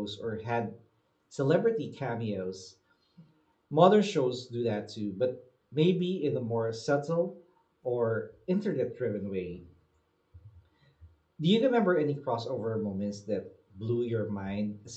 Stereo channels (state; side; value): identical; both; correlation 1.00